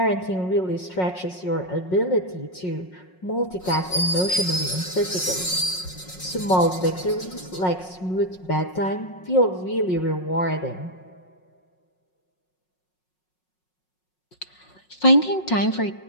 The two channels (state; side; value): late; right; 5.5 ms